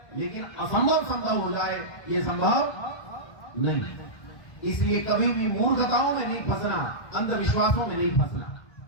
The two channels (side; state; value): right; late; 1.6 ms